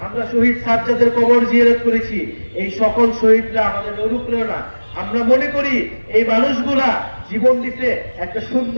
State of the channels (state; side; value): inverted; both; correlation -1.00